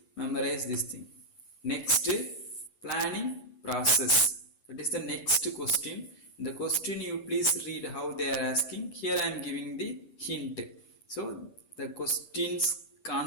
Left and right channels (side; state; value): right; late; 9.4 ms